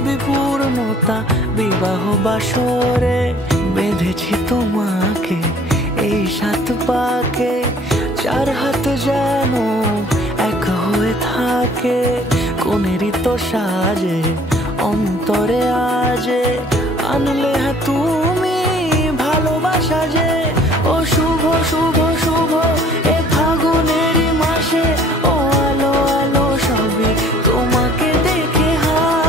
পূর্ণতা বিবাহ বাসরে। বেঁধেছি তোমাকে এই 7 পাকে, 4 হাত যেন এক হয়ে থাকে। কোনেরই তো সাজে অন্তরে আজে, আনলে হ্যাঁ তুমি ভালোবাসা যে। ও শুভ শুভ শুভ এ ফাগুনেরই মাসে, ও আলো আলো সবই তোমাকে দেখে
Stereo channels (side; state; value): both; normal; correlation 0.54